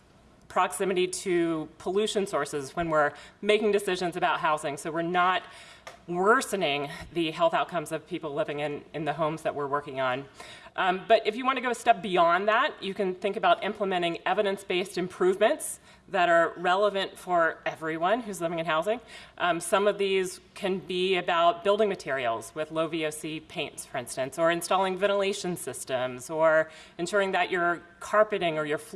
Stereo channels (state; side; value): identical; both; correlation 1.00